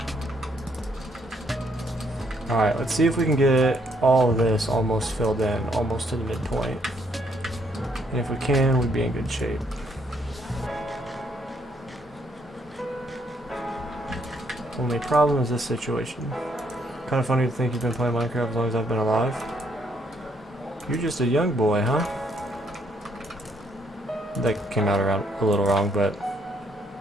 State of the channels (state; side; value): normal; both; correlation 0.71